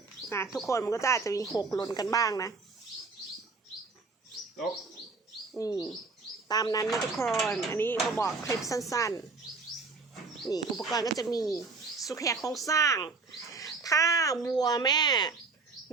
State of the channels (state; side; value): quieter; left; 4.2 dB